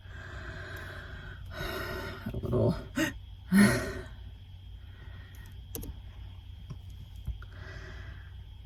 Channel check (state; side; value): identical; both; correlation 1.00